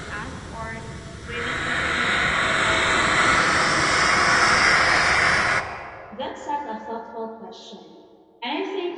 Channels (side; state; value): both; identical; correlation 1.00